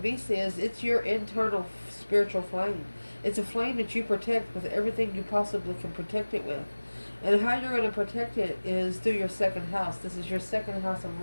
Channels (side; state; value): both; inverted; correlation -1.00